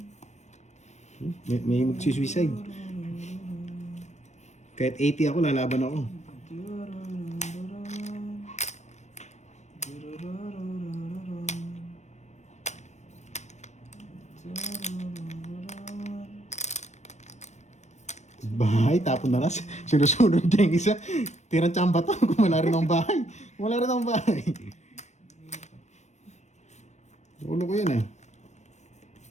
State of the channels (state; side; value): late; right; 0.34 ms